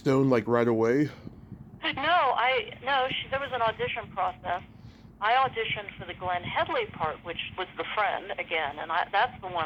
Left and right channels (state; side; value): identical; both; correlation 1.00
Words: like right away? No, there was an audition process. I auditioned for the Glenn Headley part, which was the friend again, and that's the one